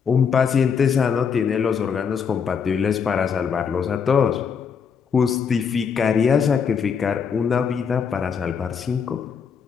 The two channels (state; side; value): quieter; right; 6.6 dB